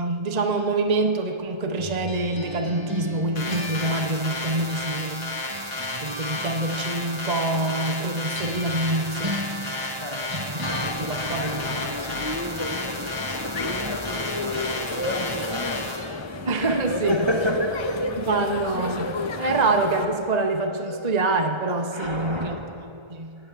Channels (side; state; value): left; late; 1.3 ms